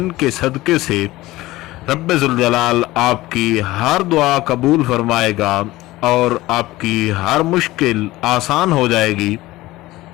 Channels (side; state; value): right; quieter; 18.2 dB